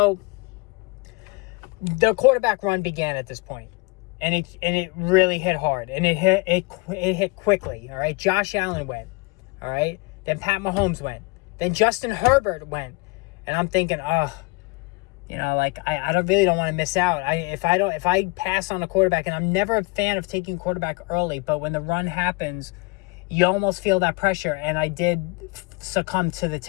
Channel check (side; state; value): right; quieter; 27.5 dB